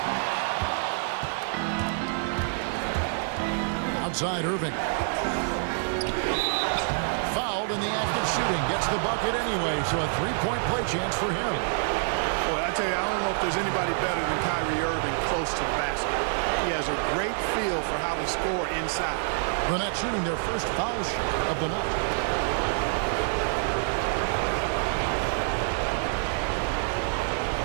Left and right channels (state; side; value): silent; left; 60 dB below the other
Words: Outside Irving. Fouled in the act of shooting. Gets the bucket anyway, so a three-point play chance for him. Boy, I tell you, I don't know if there's anybody better than Kyrie Irving close to the basket. He has a great feel for how to score inside. The Nets shooting their first foul shot of the night.